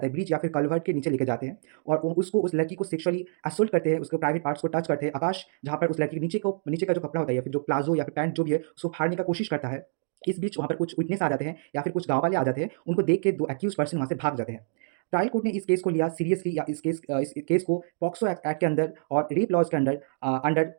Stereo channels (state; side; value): silent; left; digital silence